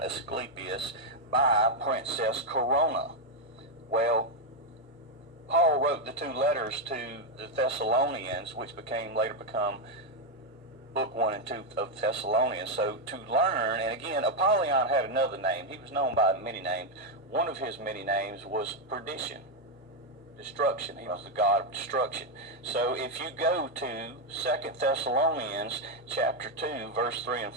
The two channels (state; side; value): normal; both; correlation 0.03